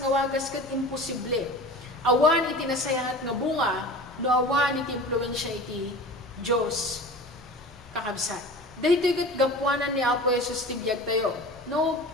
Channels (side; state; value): both; normal; correlation 0.37